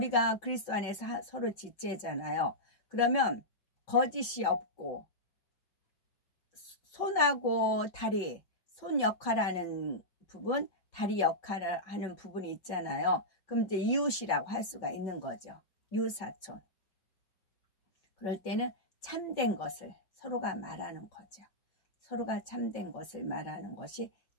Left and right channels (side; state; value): right; late; 5.3 ms